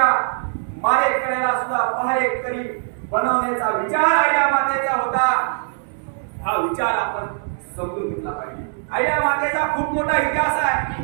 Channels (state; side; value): silent; left; digital silence